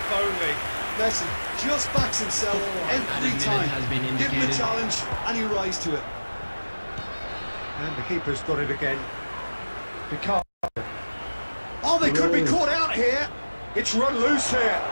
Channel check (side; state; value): both; inverted; correlation -1.00